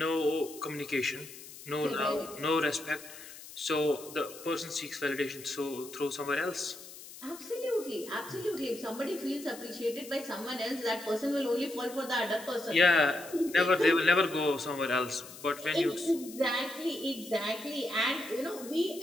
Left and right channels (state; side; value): noise; left; hiss, 15 dB below the sound